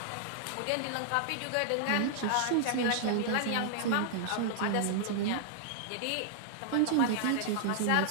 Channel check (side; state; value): both; different; correlation -0.01